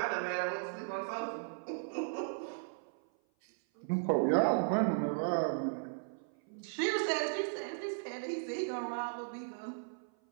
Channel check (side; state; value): left; silent; 54 dB below the other